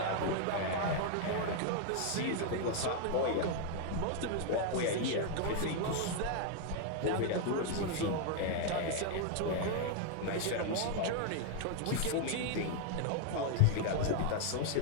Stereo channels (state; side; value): different; both; correlation 0.00